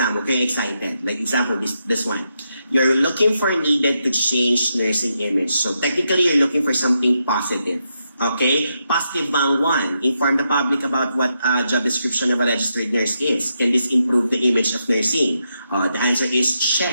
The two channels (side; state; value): both; inverted; correlation -0.83